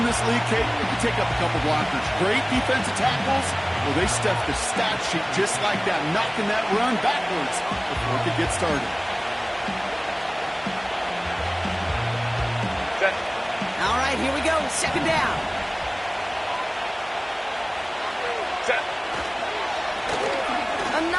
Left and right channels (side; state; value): both; identical; correlation 1.00